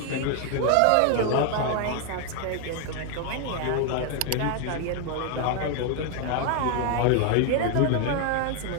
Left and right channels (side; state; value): both; different; correlation 0.01